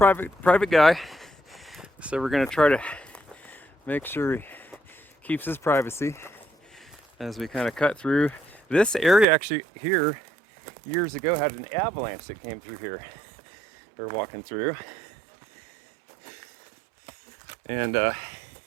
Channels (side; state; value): left; drops out; at 9.2 s